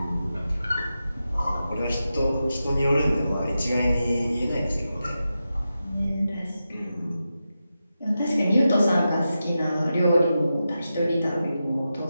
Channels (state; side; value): inverted; both; correlation -0.90